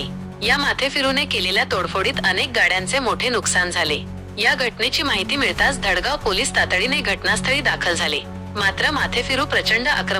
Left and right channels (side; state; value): both; identical; correlation 1.00